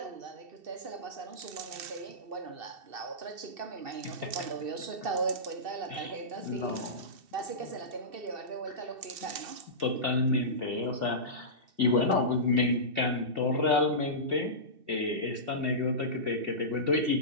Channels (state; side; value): late; left; 2.7 ms